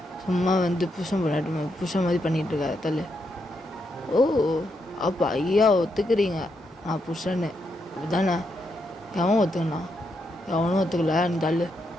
சும்மா வந்து புருஷன் மாதிரி பண்ணிகிட்ருக்காரு, தள்ளு. ஓ அப்போ ஐயா ஒத்துக்கிறீங்க நான் புருஷன்னு அப்படிதானே? எவன் ஒத்துக்கண்ணா? எவனும் ஒத்துக்கல, நீ தள்ளு.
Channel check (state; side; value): normal; both; correlation 0.81